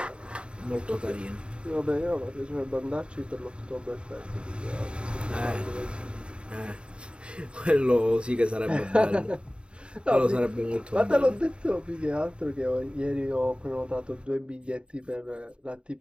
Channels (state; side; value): late; left; 0.054 ms